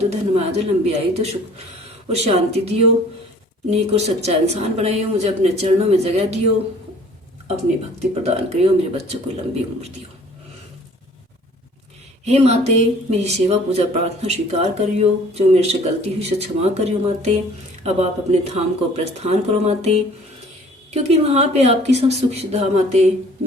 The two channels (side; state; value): both; normal; correlation 0.52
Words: धनमाया दो, लंबी आयु दो, सुख और शांति दियो, नेक और सच्चा इंसान बनाइयो, मुझे अपने चरणों में जगह दियो, अपनी भक्ति प्रदान करियो, मेरे बच्चों को लंबी उम्र दियो। हे माते, मेरी सेवा पूजा प्रार्थना स्वीकार करियो, जो मेरे से गलती हुई से क्षमा करियो माते। अब आप अपने धाम को प्रस्थान करो माते, क्योंकि वहाँ पे आपकी सब सुख सुविधा माते,